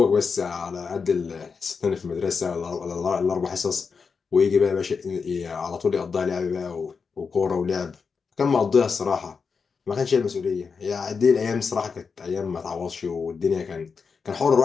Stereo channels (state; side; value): quieter; right; 5.4 dB